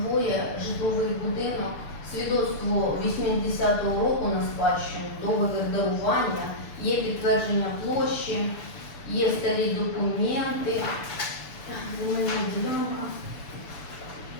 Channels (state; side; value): late; right; 6.9 ms